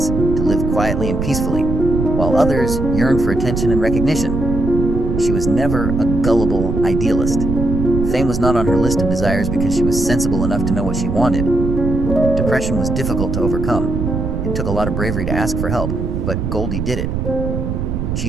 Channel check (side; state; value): right; noise; rumble, 2 dB below the sound